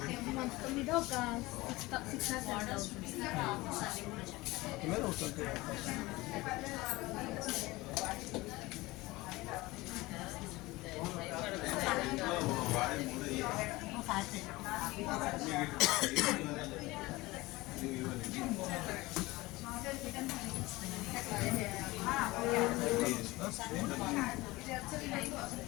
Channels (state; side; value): quieter; right; 20.7 dB